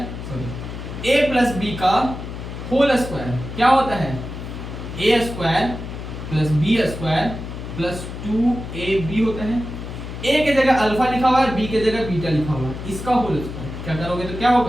sorry A plus B का होल स्क्वायर क्या होता है? A square plus B square plus 2ab होता है। ए के जगह अल्फा लिखा हुआ है, बी के जगह बीटा लिखा हुआ है, इसका होल स्क्वायर क्या करोगे तो क्या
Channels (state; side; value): noise; left; hum, 9 dB below the sound